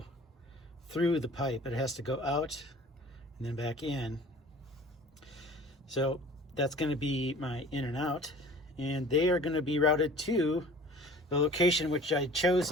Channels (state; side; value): normal; both; correlation 0.46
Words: through the pipe. It has to go out and then back in. So that's going to be my in and out, and they are going to be routed to the location which I'd